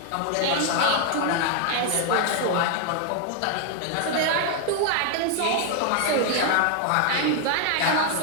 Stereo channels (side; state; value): both; different; correlation 0.00